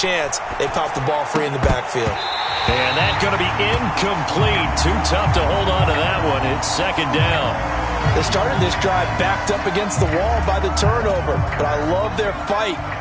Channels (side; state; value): both; identical; correlation 1.00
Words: They popped the ball free in the backfield. And that's going to be incomplete. Too tough to hold on to that one. It's second down. They started this drive backed up against the wall by the turnover, but I love their fight.